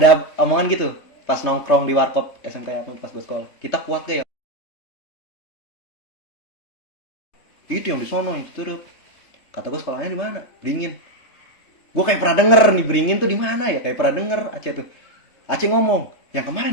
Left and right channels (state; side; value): late; right; 3.2 ms